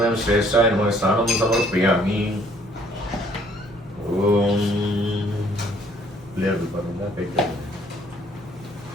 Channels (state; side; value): normal; both; correlation 0.61